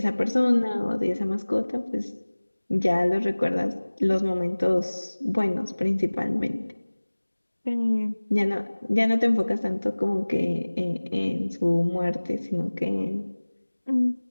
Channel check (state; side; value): inverted; both; correlation -1.00